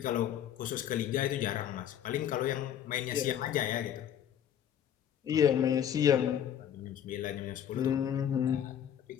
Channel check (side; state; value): right; quieter; 9.6 dB